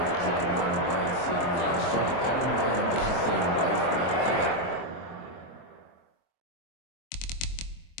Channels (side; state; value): right; late; 23 ms